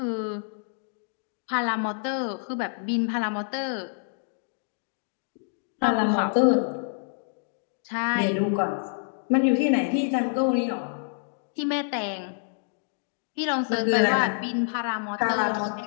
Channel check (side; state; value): right; silent; digital silence